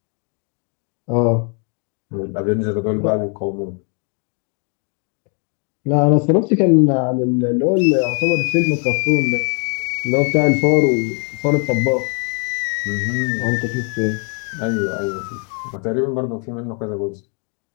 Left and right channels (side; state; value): right; quieter; 39.8 dB